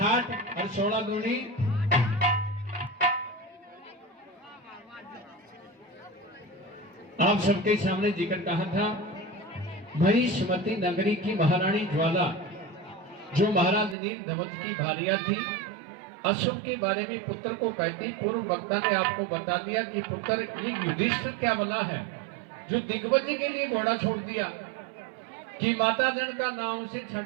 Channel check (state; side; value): drops out; left; at 14.0 s